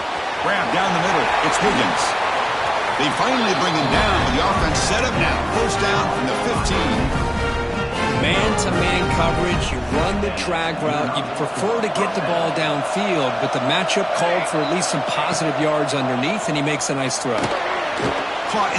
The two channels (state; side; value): identical; both; correlation 1.00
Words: Grab down the middle. It's Higgins. They finally bring him down with the offense set up now. First down from the 15. Man-to-man coverage. You run the drag route. You prefer to get the ball downfield, but the matchup called for at least some positive yards underneath, and he makes a nice throw. Caught